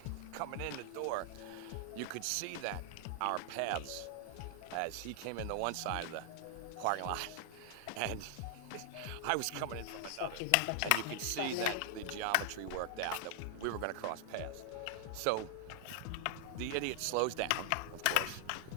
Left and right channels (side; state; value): both; different; correlation 0.00